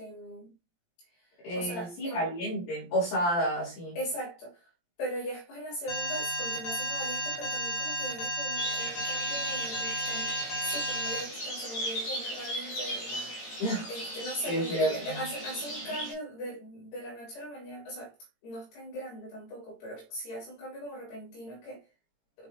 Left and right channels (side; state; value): right; late; 17 ms